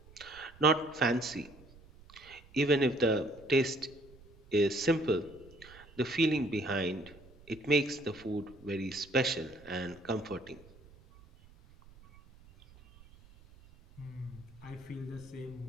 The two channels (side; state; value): right; noise; rumble, 23 dB below the sound